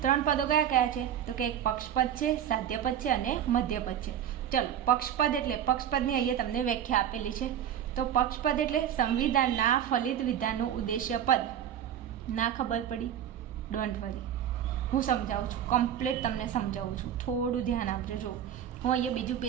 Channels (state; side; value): quieter; left; 9.9 dB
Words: 3 પદો કયા કયા છે તો કે એક પક્ષપદ છે, સાધ્યપદ છે અને મધ્યપદ છે. ચલો, પક્ષપદ એટલે પક્ષપદની અહીંયા તમને વ્યાખ્યા આપેલી છે. તો પક્ષપદ એટલે સંવિધાનના ફલિત વિધાનનું ઉદ્દેશ્ય પદ. ના ખબર પડી? ડોન્ટ વરી, હું સમજાવું છું, કમ્પ્લીટ તમને સમજાવું છું. થોડું ધ્યાન આપજો. જો હું અહીંયા બીજું